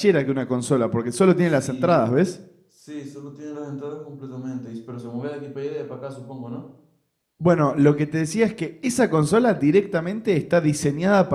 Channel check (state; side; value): identical; both; correlation 1.00